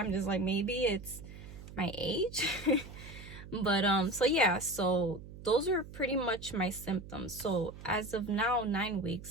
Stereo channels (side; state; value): right; noise; hum, 14 dB below the sound